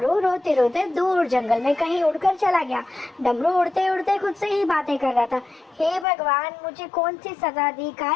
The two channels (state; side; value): drops out; right; at 6.1 s